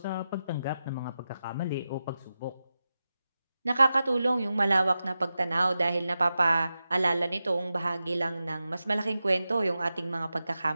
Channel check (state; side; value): inverted; both; correlation -0.92